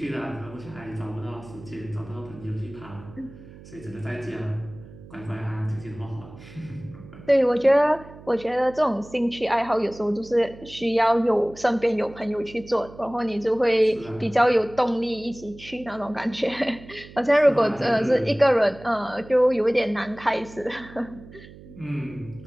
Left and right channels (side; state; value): right; noise; hum, 19 dB below the sound